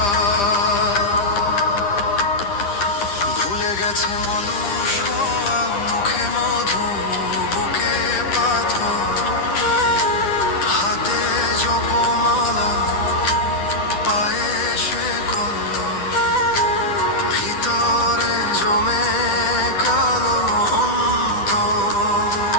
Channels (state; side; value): late; right; 10 ms